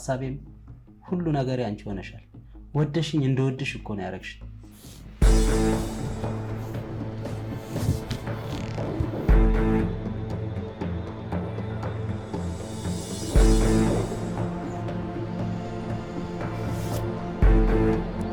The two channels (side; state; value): both; identical; correlation 1.00